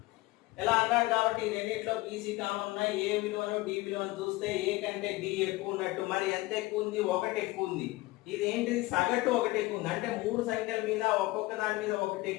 ఇలా అన్నాడు. కాబట్టి ఈ రెండిట్లో BC కామన్ ఉన్నాయి. ఏ విలువను D విలువను చూస్తే A కంటే D ఎక్కువ ఉన్నట్టు. మరి ఎంత ఎక్కువ ఉంది? 1 ఎక్కువ ఉంది. ఇది ఏంటిది? సగటు 1 ఎక్కువ ఉంది. అంటే 3 సంఖ్యల మీద ఒక్కొక్క దాని మీద 1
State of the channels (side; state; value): right; quieter; 20.2 dB